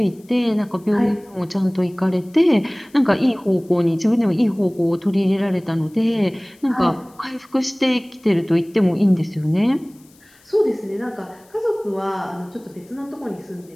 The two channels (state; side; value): noise; left; hiss, 30 dB below the sound